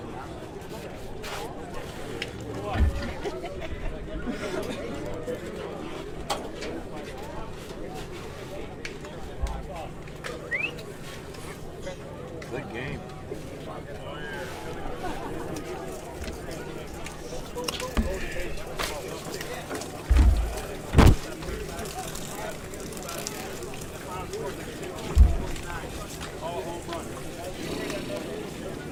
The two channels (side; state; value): both; identical; correlation 1.00